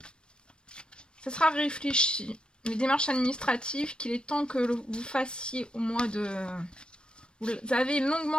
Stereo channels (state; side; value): late; right; 0.054 ms